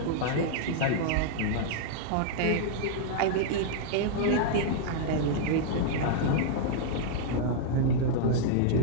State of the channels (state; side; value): different; both; correlation -0.01